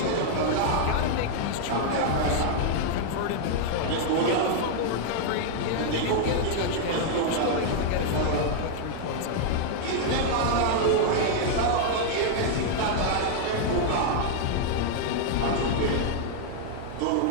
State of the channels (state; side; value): different; both; correlation 0.00